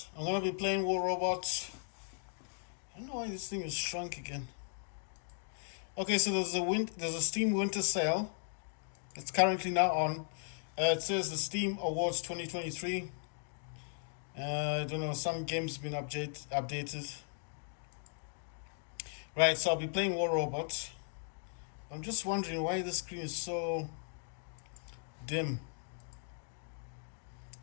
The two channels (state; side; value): silent; right; digital silence